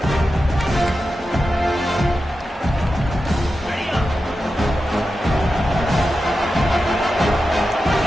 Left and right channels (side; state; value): both; normal; correlation 0.91